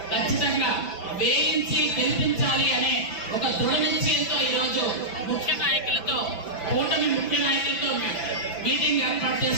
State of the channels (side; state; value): right; late; 5.8 ms